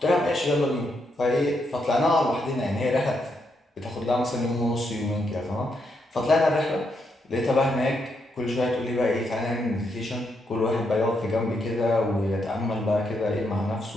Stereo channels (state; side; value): normal; both; correlation 0.79